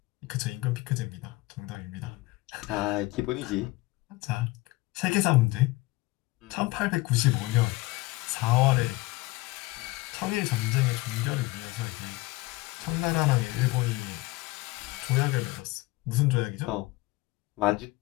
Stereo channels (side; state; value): right; quieter; 21.3 dB